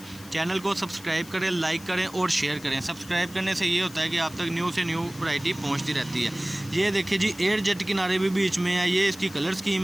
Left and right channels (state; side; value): noise; left; hiss, 19 dB below the sound